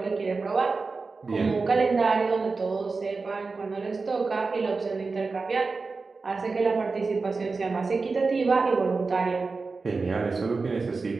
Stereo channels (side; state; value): left; quieter; 4.2 dB